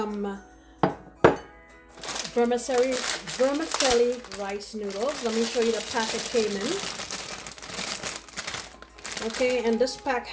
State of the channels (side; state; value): both; identical; correlation 1.00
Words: vermicelli rice noodles. Let me show you the pack it came in. Okay, and this pack